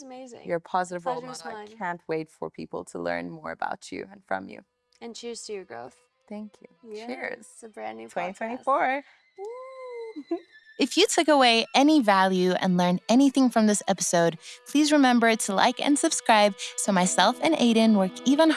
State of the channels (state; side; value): identical; both; correlation 1.00